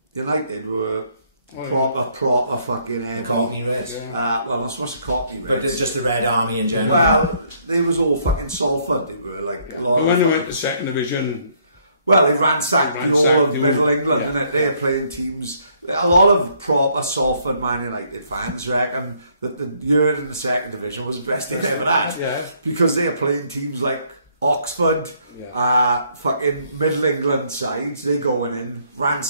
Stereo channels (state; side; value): inverted; both; correlation -0.67